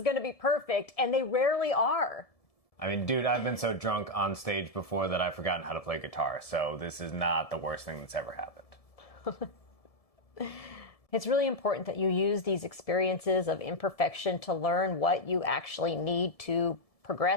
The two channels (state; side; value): late; right; 1.7 ms